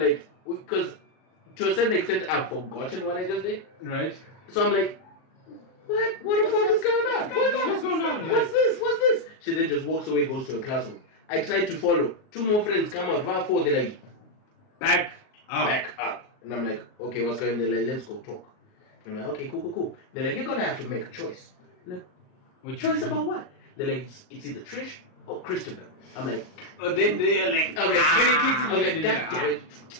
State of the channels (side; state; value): right; late; 38 ms